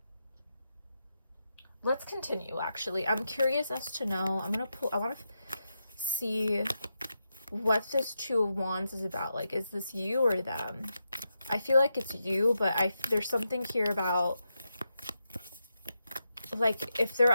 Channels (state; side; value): inverted; both; correlation -0.86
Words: let's continue, actually. I'm curious as to know. I want to see what this Two of Wands is about. Like, is this you or them? I feel like it's you, but there's something here about, like, if they're